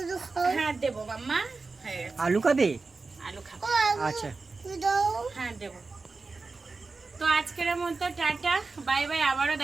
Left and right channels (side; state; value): left; quieter; 4.0 dB